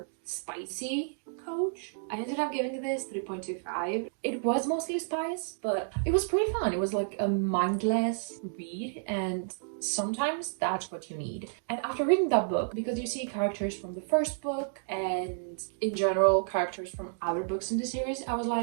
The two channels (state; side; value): silent; left; digital silence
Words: spicy coach. I ended up giving this 3.25. It was mostly spice, but it was pretty fun. It was like a mindless read, and sometimes that's what you need. And after reading that book, because you see characters from the first book and in general characters from other books in the series, I was